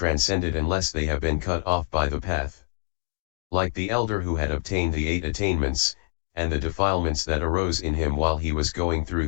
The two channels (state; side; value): silent; right; digital silence